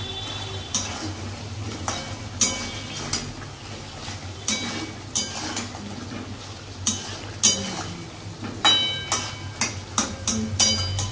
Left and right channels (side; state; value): both; identical; correlation 1.00